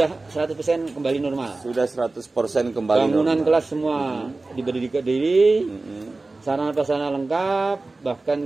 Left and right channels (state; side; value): quieter; left; 3.3 dB